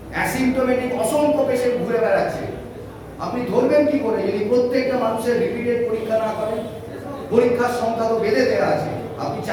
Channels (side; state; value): both; identical; correlation 1.00